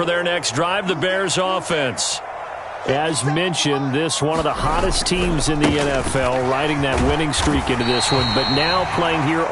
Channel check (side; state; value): both; identical; correlation 1.00